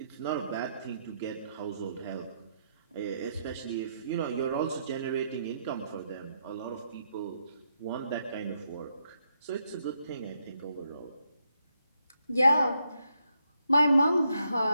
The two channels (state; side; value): inverted; both; correlation -0.79